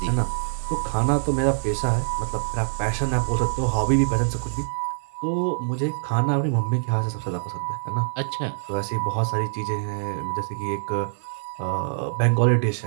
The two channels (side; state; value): left; silent; 62 dB below the other